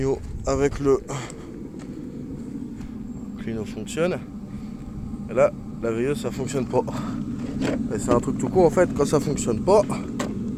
avec le clino fonctionne. Et là, la veilleuse ça fonctionne pas. Et c'est un truc tout con en fait, quand ça fonctionne pas.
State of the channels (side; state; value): both; identical; correlation 1.00